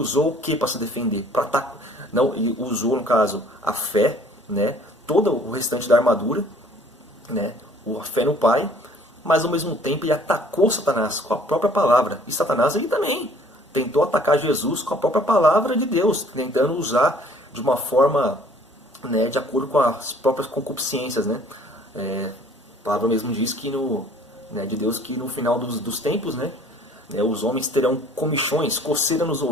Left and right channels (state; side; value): normal; both; correlation 0.55